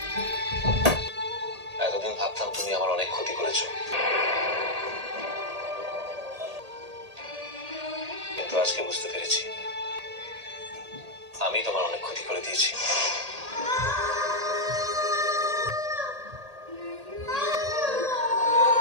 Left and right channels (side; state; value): left; late; 1.8 ms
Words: এতদিন ভাবতাম তুমি আমার অনেক ক্ষতি করেছো, কিন্তু আজকে বুঝতে পেরেছি আমি তোমার অনেক ক্ষতি করে দিয়েছি।